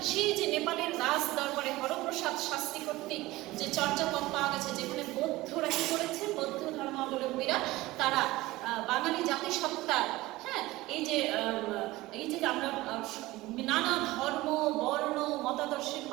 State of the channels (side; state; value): left; quieter; 18.8 dB